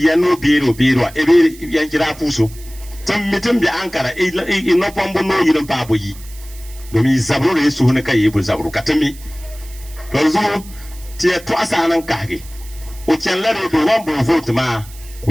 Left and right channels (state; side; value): noise; right; hiss, 20 dB below the sound